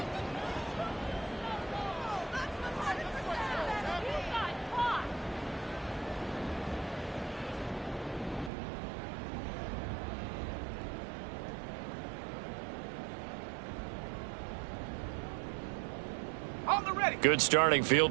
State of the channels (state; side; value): drops out; left; at 8.5 s